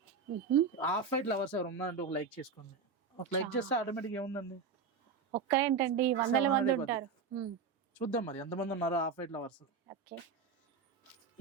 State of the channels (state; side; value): quieter; left; 5.3 dB